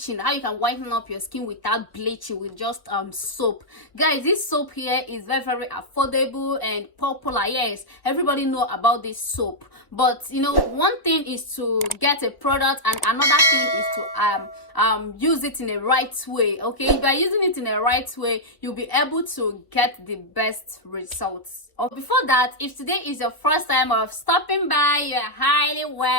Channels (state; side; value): late; right; 1.1 ms